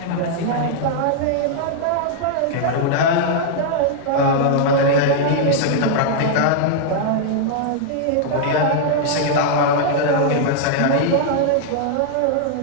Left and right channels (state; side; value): different; both; correlation -0.01